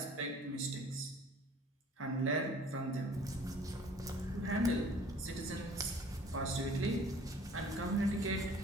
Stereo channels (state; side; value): normal; both; correlation 0.51